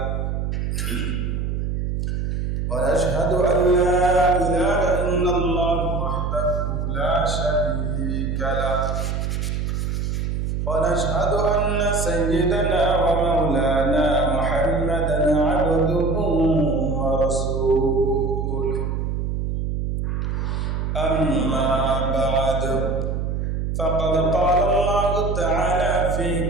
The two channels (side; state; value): right; noise; hum, 1 dB below the sound